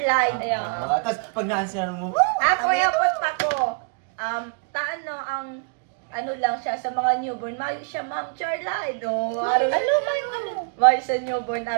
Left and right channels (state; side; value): quieter; left; 39.2 dB